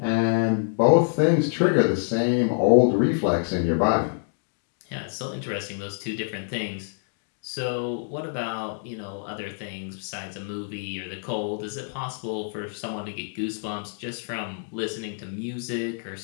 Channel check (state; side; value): silent; right; digital silence